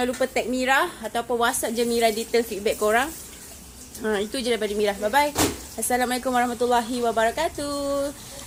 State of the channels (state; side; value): identical; both; correlation 1.00